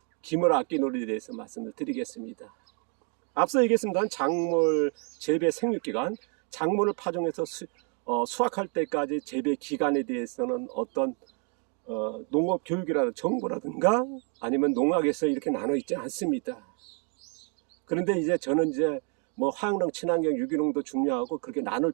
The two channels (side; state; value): left; quieter; 38.8 dB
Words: 기무라 악기놀이에 대해서 말씀을 드리겠습니다. 앞서 얘기했습니다. 작물 재배 생육 기간, 작물을 파종해서 수확할 때까지 재배 기간에 대해서는 어떤 농업 교육이라든가 정보라든가 아니면 농학에서 이렇게 나눠 있지 않습니다. 그런데 이제 저는 이제 뭐 화학농, 친환경, 유기농도 중요하고 그렇게 나눌